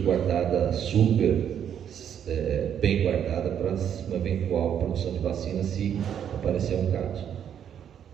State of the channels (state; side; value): quieter; left; 9.1 dB